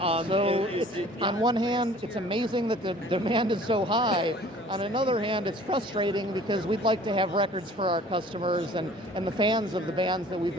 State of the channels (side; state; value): both; normal; correlation 0.50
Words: one hand, it's amazing that the demand is so high. On another hand, it's frustrating because we'd like to have records for our customers and the fans of the bands that we've